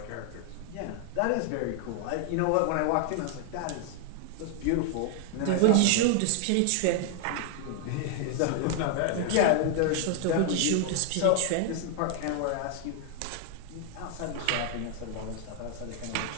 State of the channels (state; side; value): different; both; correlation 0.00